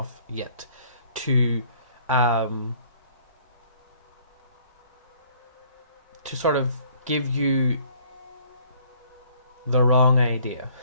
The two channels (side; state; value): both; inverted; correlation -0.58